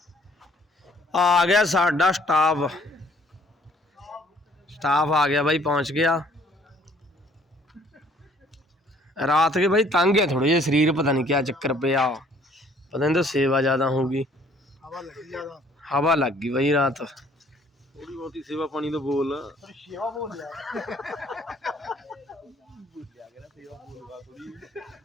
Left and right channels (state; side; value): normal; both; correlation 0.60